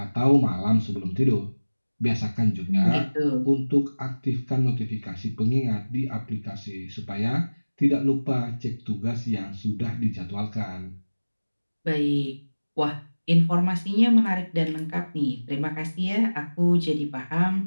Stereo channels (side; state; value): both; inverted; correlation -1.00